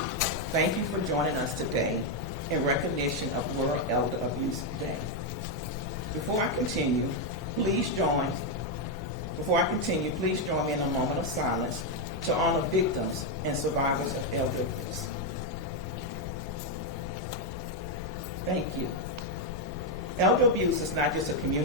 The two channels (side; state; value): both; normal; correlation 0.03